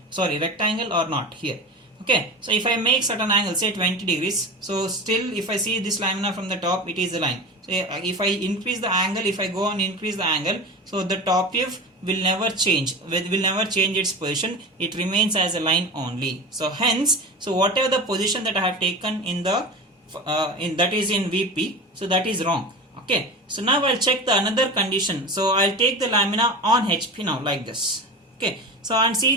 or not here. Okay, so if I make certain angle, say 20 degrees, so still if I see this lamina from the top, it is a line. So if I increase the angle, if I go and increase the angle, so the top view will never change, will never change its position. It remains as a line only. So hence, so whatever the position that I have taken in the that is in VP, so that is wrong. Okay, so now I'll check the another condition. So I'll take the lamina on HP now like this. Okay, so and see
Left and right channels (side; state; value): both; normal; correlation 0.28